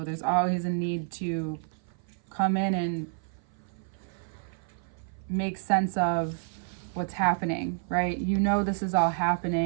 There's always a need to come in and make sense of what's happening, right? This is all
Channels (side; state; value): left; silent; 55 dB below the other